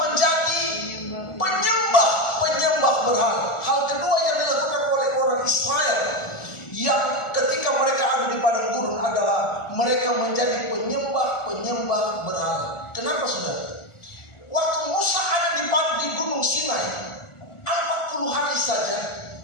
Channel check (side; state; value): right; late; 1.4 ms